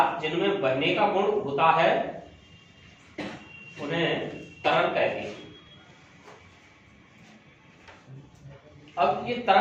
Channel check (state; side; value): identical; both; correlation 1.00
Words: जिनमें बहने का गुण होता है उन्हें तरल कहते हैं। अब ये